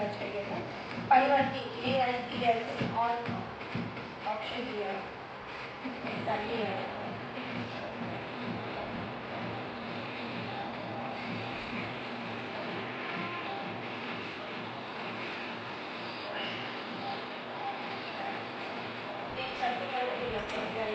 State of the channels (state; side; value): identical; both; correlation 1.00